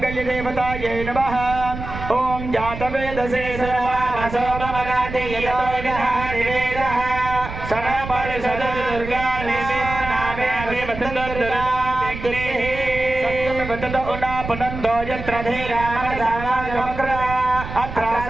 देवतायै नमः। ओम जातवेदसे सर्वासो ममगाति यतो विधानिवेदः सनपरिषद दुर्गा नामे अभिवतन्दुर्दुरा व्यक्तिः सत्यं वदत उना पुनन्दो यत्र धीरामसावाजमक्रा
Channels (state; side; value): noise; right; rumble, 9 dB below the sound